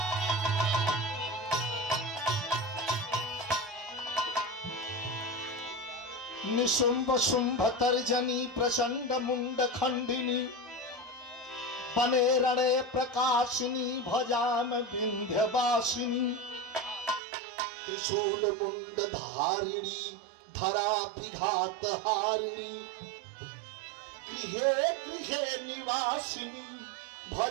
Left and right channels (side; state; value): left; drops out; at 17.2 s